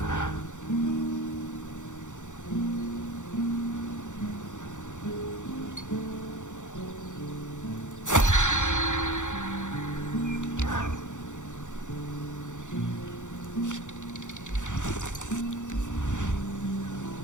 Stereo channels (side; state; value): right; late; 0.85 ms